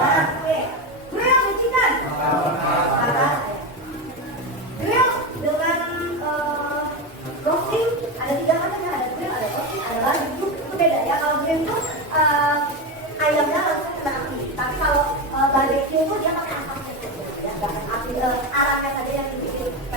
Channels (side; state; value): both; normal; correlation 0.16